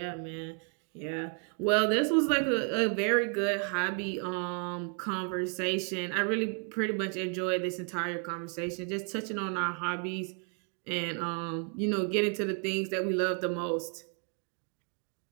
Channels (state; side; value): quieter; left; 39.5 dB